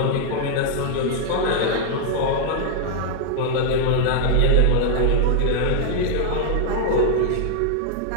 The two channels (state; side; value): different; both; correlation -0.01